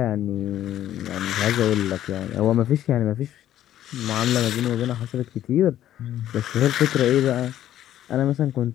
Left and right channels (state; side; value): quieter; right; 12.1 dB